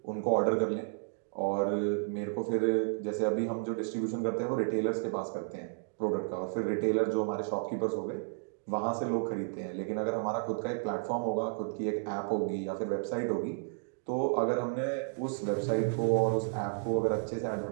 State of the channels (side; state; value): left; silent; digital silence